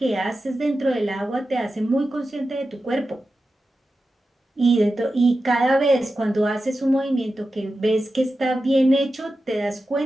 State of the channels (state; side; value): normal; both; correlation 0.92